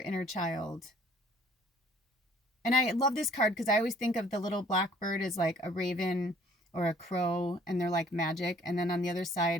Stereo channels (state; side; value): normal; both; correlation 0.57